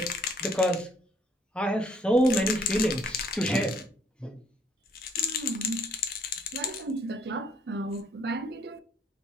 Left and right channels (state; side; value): normal; both; correlation 0.66